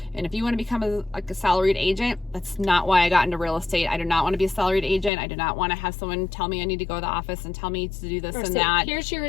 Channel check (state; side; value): drops out; right; at 5.1 s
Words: And if you want to become a salaried agent, that's not why I got into real estate. I do not want to be a salaried agent. I do not want to have someone tell me I need to go to the office and tell me to do this and that. Here's your